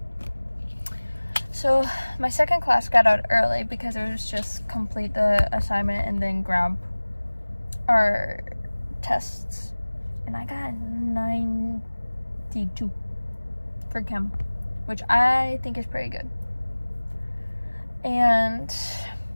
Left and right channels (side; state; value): both; inverted; correlation -1.00